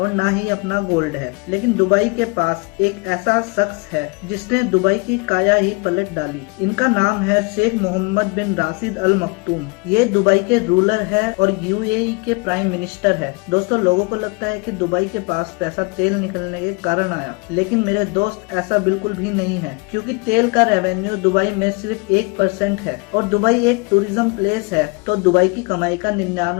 ना ही अपना गोल्ड है, लेकिन दुबई के पास एक ऐसा शख्स है जिसने दुबई की काया ही पलट डाली। इनका नाम है शेख मोहम्मद बिन राशिद अल मखतूम। ये दुबई के रूलर है और यूएई के प्राइम मिनिस्टर है। दोस्तों, लोगों को लगता है कि दुबई के पास पैसा तेल निकलने के कारण आया, लेकिन मेरे दोस्त ऐसा बिल्कुल भी नहीं है, क्योंकि तेल का रेवेन्यू दुबई में सिर्फ 1% है और दुबई एक टूरिज्म प्लेस है, तो दुबई की कमाई का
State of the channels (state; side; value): quieter; right; 29.4 dB